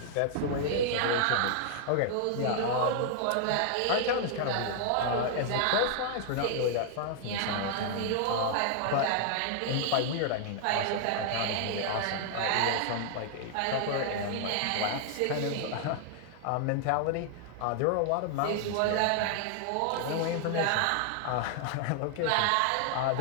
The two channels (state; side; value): different; both; correlation 0.00